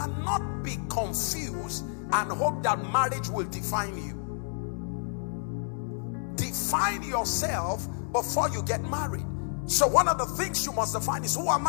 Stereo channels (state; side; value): silent; right; 58 dB below the other